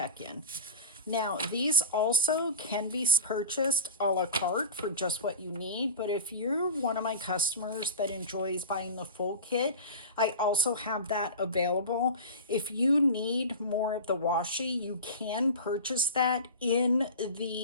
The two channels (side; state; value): both; inverted; correlation -0.31